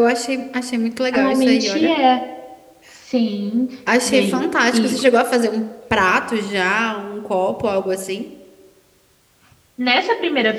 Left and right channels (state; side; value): identical; both; correlation 1.00